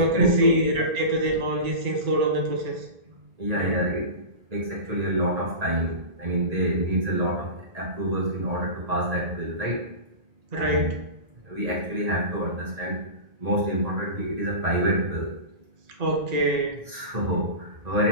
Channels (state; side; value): late; left; 1.8 ms